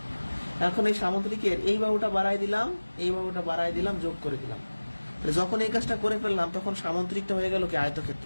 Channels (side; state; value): both; inverted; correlation -1.00